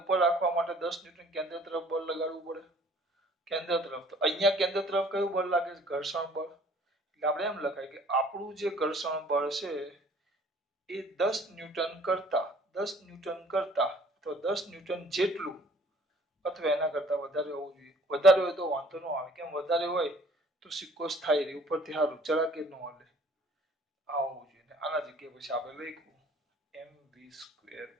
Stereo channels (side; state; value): both; normal; correlation 0.55